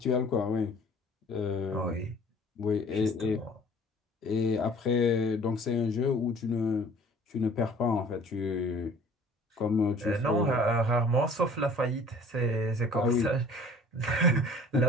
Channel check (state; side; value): normal; both; correlation 0.50